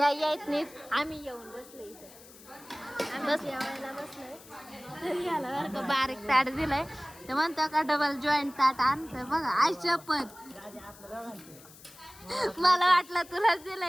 यायच नाहीच. आम्ही येऊन बसलो इथं. बस जेवायला बसलोय. याला बरं का बारीक ताट दिलंय ते म्हणतो का डबल जॉईंट ताट आणतं बघा. आय शपथ मला वाटलं तुलाच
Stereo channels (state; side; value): noise; left; hiss, 21 dB below the sound